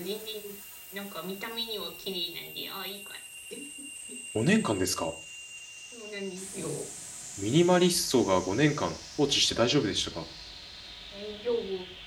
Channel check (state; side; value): identical; both; correlation 1.00